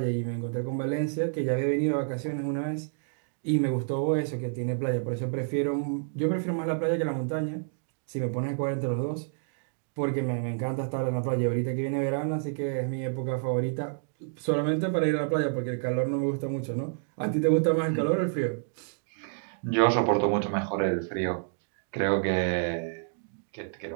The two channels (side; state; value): left; silent; digital silence